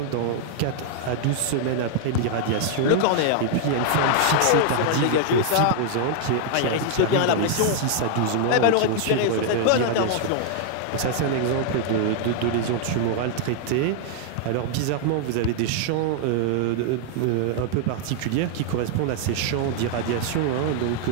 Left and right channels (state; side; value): different; both; correlation 0.00